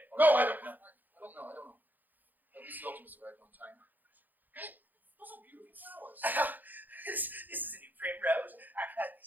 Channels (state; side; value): late; left; 0.085 ms